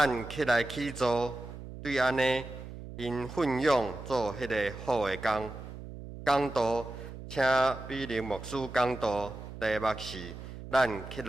起来起坐，对安尼，因奋勇做迄个好的工。讲道，请比林牧师讲道，题目是咱起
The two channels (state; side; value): noise; right; hum, 12 dB below the sound